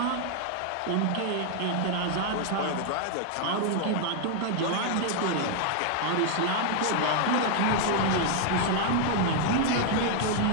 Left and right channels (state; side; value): different; both; correlation 0.00